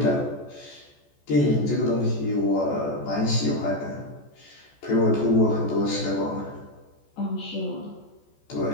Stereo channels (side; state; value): right; late; 14 ms